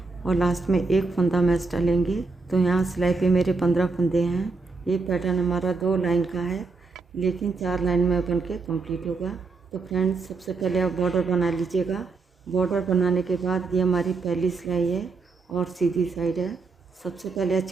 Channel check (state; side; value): quieter; left; 4.1 dB